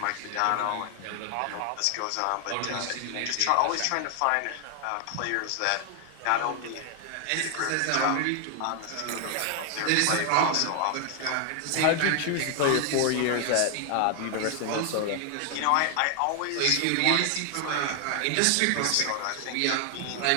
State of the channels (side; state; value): both; different; correlation 0.00